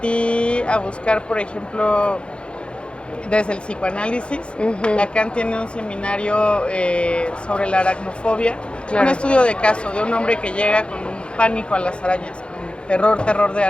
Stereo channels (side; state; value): right; late; 0.057 ms